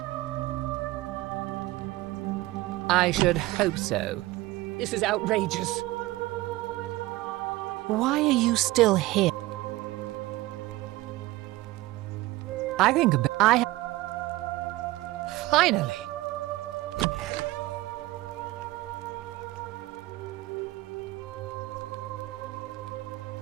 I should hope so. This is outrageous. Why are you still here? I think Finally!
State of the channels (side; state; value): left; quieter; 18.6 dB